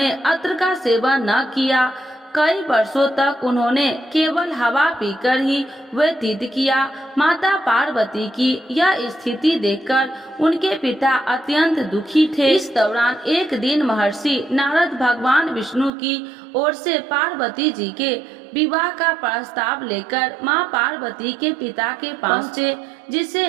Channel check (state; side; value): drops out; left; at 15.9 s